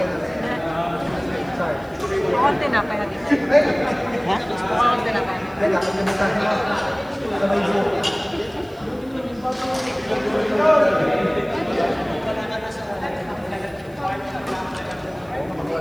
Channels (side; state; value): right; noise; hiss, 29 dB below the sound